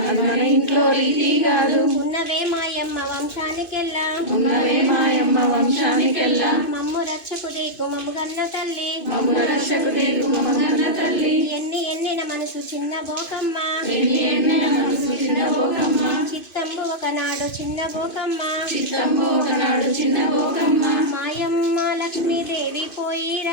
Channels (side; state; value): right; late; 2.5 ms